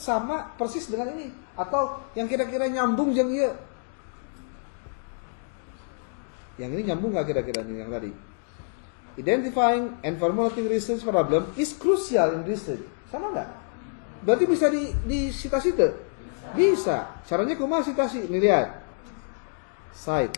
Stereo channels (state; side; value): silent; right; digital silence